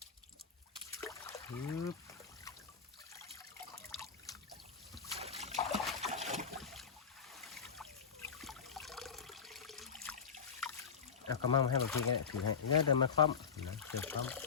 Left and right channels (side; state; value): right; quieter; 6.4 dB